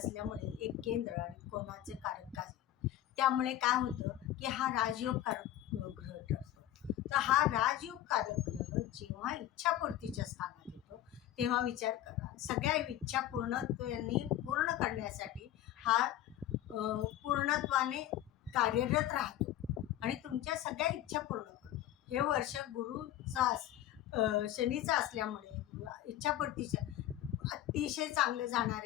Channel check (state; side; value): quieter; right; 13.0 dB